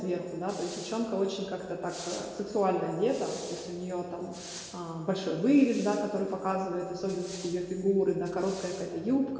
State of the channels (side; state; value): both; identical; correlation 1.00